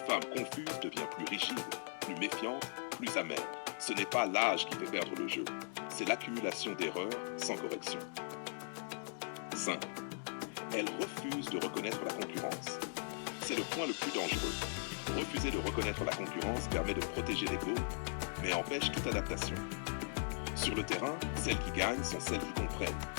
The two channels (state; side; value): silent; right; digital silence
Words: confuse devient plus rigide, plus méfiante, plus amère. Ce n'est pas l'âge qui fait perdre le jeu, c'est l'accumulation d'erreurs sans correction. 5. Elle refuse de reconnaître la concurrence. C'est le point le plus dangereux. Refuser de reconnaître la concurrence permet de protéger l'ego, mais empêche toute adaptation. Sur le terrain, celles qui gagnent sont celles qui comprennent